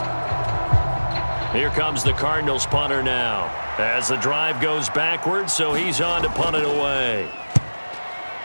Here comes the Cardinals punter now. As the drive goes backwards, so he's on to punt it away.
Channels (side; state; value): both; inverted; correlation -1.00